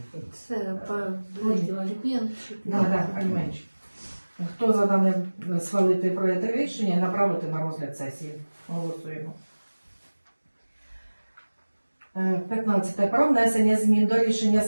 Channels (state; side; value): inverted; both; correlation -1.00